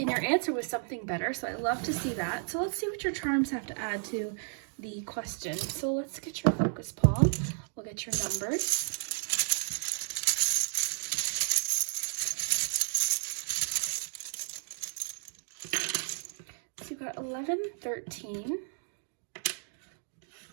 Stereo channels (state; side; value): silent; left; 56 dB below the other